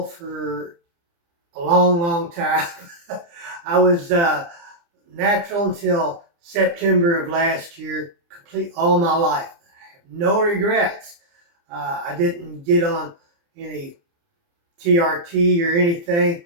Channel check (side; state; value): left; late; 29 ms